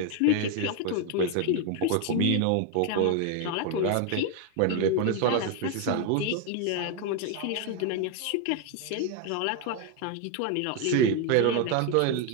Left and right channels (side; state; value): both; different; correlation 0.01